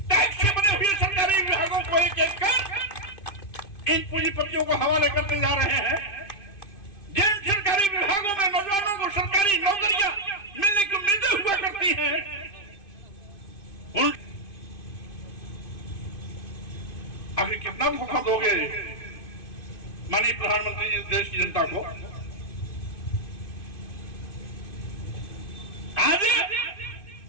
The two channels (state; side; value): late; right; 2.5 ms